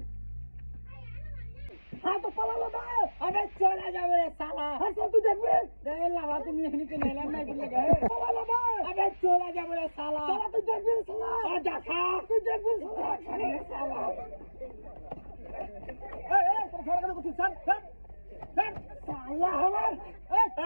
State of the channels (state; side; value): inverted; both; correlation -1.00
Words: হ্যাঁ তো পালালো না, আবে চলে যাবো রে শালা। আচ্ছা তুই দেখবে লাভা তুমি এখানে কে নেলাম না বলে গে পালালো না, আবে চলে যাবো রে শালা। তুই দেখবি শালা, দেখা তুই দেখবি শালা। এই তোর ছাড়া কথা করছিস, স্যার শালা আমার।